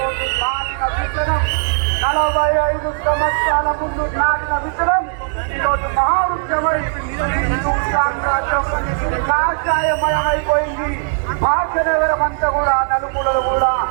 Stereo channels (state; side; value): silent; left; digital silence